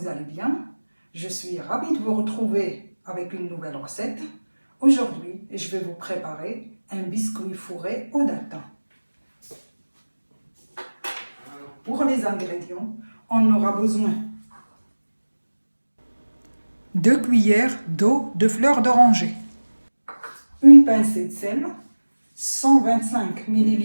allez bien. Je suis ravie de vous retrouver avec une nouvelle recette. Aujourd'hui, je vais vous préparer un biscuit fourré aux dattes. Pour les ingrédients, on aura besoin 2 cuillères d'eau de fleur d'oranger, une pincée de sel, 125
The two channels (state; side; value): inverted; both; correlation -1.00